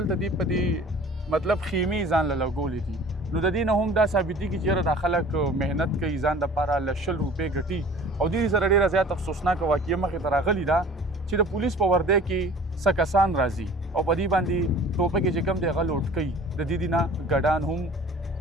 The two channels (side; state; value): both; normal; correlation 0.46